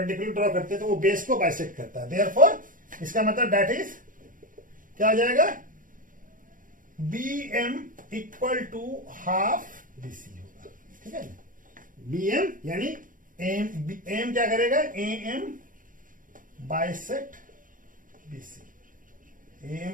ड्रॉ करते हैं तो वो बेस को बाइसेक्ट करता है। देयरफॉर इसका मतलब दैट इज क्या हो जाएगा, BM equal to half BC होगा। ठीक है, BM यानी एम क्या करेगा, AM बाइसेक्ट BC, AM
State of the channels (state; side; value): late; left; 0.39 ms